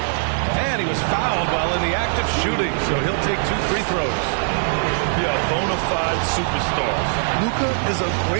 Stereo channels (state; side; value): silent; left; 65 dB below the other